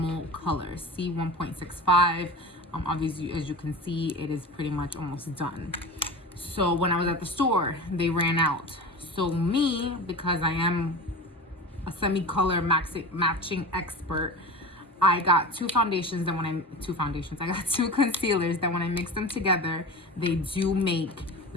color, C1.65. Obviously, as you can see, it is pretty much almost done. So when I was at the store, they ran out. So me, because I am a semi-color matching expert, I got two concealers that when I mix them together, they do make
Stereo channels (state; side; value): normal; both; correlation 0.31